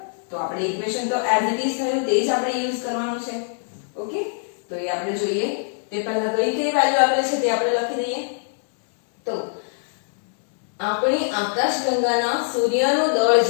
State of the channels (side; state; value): right; silent; digital silence